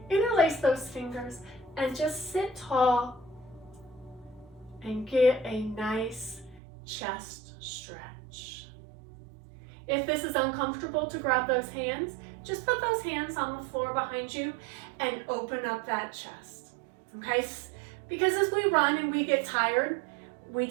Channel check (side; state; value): left; drops out; at 6.6 s